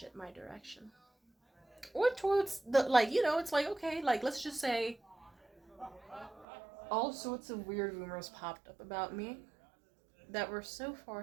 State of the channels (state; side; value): drops out; left; at 6.5 s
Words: my direction. Or towards the, like, it's like, okay, like, let's just say all sorts of weird rumors popped up about me that were so